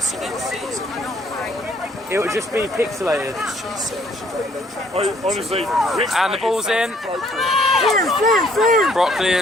It would just be pixelated. Honestly, and the ball's in.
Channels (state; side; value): normal; both; correlation 0.63